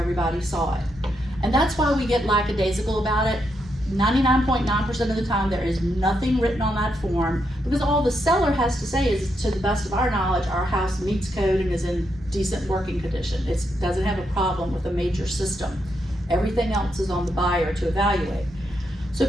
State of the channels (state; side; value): normal; both; correlation 0.81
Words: saw it. And that's why we get lackadaisical about it. 99.9% of the time there is nothing written on that form, because all the seller has to say is, to the best of our knowledge, our house meets code and is in decent working condition. It doesn't have a problem with a major system. Everything else is on the buyer to evaluate. So